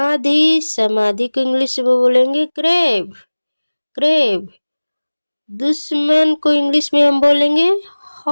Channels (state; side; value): inverted; both; correlation -1.00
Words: समाधि को इंग्लिश में बोलेंगे ग्रेव, ग्रेव। दुश्मन को इंग्लिश में हम बोलेंगे